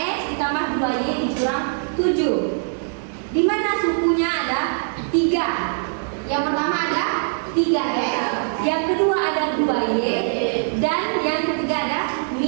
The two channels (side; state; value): left; silent; digital silence